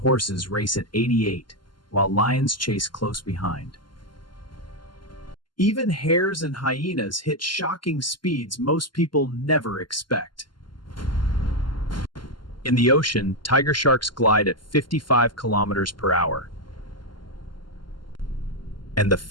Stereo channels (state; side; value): late; right; 0.71 ms